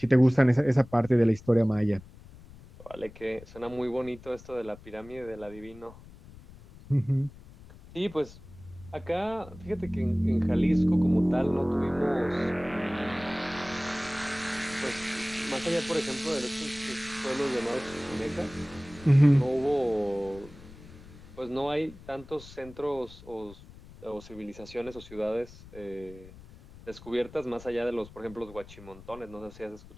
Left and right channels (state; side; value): noise; left; rumble, 19 dB below the sound